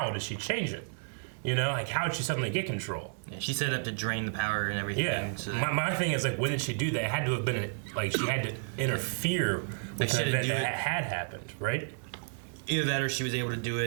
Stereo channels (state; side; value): silent; left; digital silence